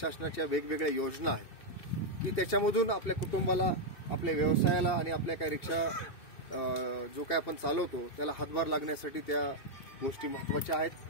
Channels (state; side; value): late; right; 2.7 ms